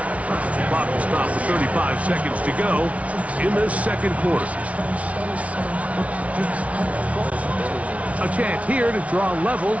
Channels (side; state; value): left; late; 0.065 ms